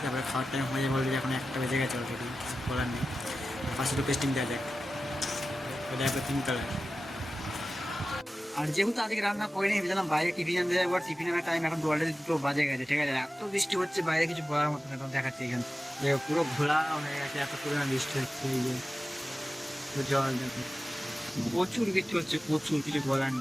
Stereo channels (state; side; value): normal; both; correlation 0.94